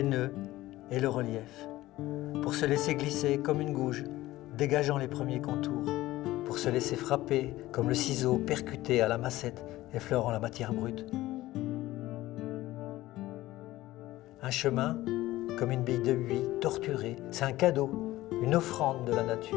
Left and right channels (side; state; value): right; quieter; 16.8 dB